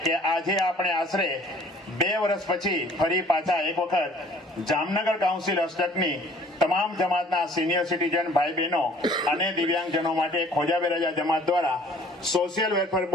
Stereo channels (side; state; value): both; normal; correlation 0.54